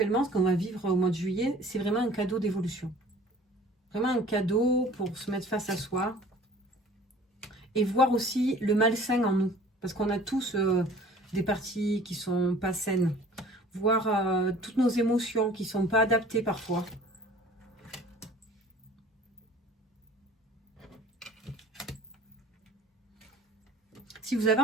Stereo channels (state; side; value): normal; both; correlation 0.48